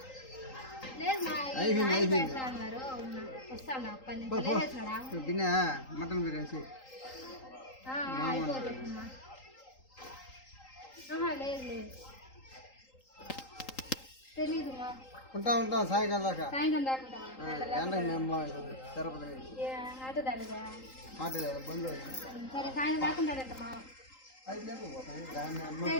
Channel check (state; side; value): late; right; 3.8 ms